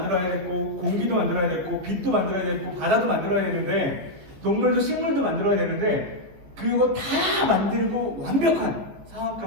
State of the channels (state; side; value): late; left; 15 ms